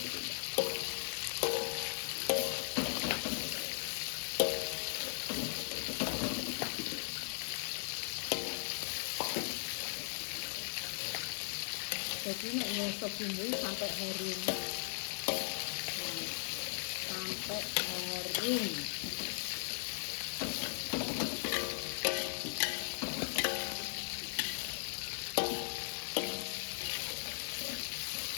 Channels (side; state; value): right; silent; 52 dB below the other